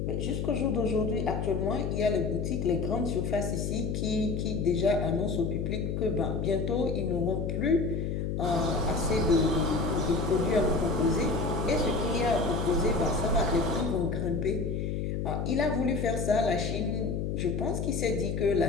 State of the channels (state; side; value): noise; left; hum, 1 dB below the sound